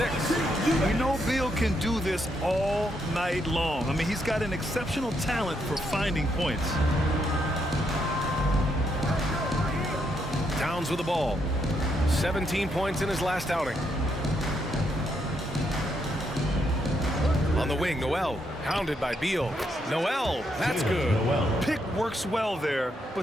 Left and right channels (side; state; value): both; normal; correlation 0.77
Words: We know Beal can do this all night long. I mean, he's got an exceptional talent for finding points. Towns with the ball. 17 points in his last outing. On the wing, Noel. Hounded by Beal. Noel, that's good. Pick works well there,